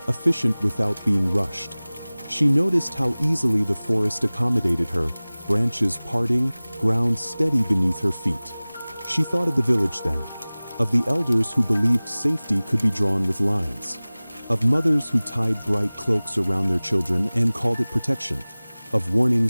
efficient without being rushed. She noticed how easily the forest accommodated her, branches parting, ground steady beneath her feet. She thought of the village then, of the elders who believed safety could be drawn with lines, of mothers who tied bright cloaks around their children and called it protection, of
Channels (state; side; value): inverted; both; correlation -0.99